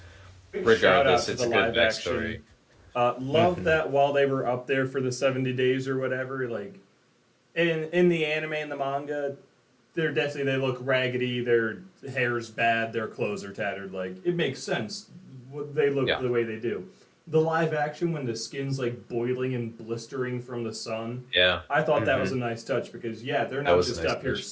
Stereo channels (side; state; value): both; identical; correlation 1.00